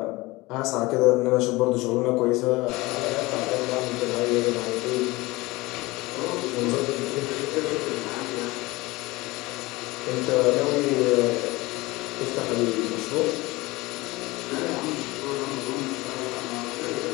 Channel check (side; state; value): right; quieter; 21.5 dB